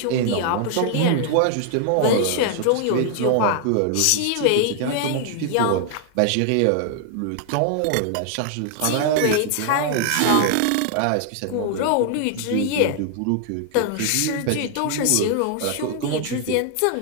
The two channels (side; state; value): both; different; correlation 0.00